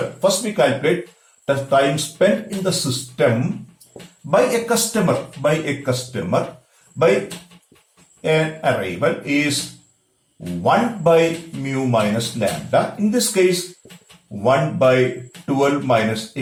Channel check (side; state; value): both; identical; correlation 1.00